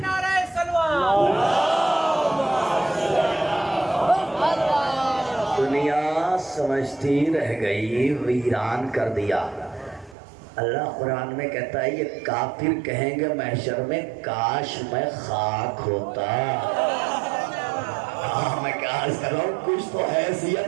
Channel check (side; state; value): left; drops out; at 10.2 s